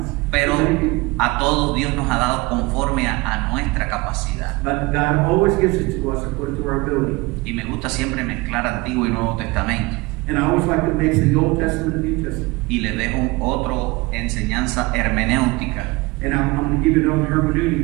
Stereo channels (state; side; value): quieter; left; 23.4 dB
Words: Pero Many people. a todos Dios nos ha dado conforme a nuestra capacidad. But God always gives it to us according to our ability. Y me gusta siempre mezclar Antiguo y Nuevo Testamento. And I always like to mix the Old Testament and New Testament. Y le dejo otra enseñanza hermenéutica. And I'm going to give you another